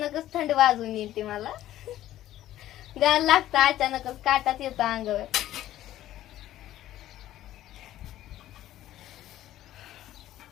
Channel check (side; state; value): right; quieter; 13.6 dB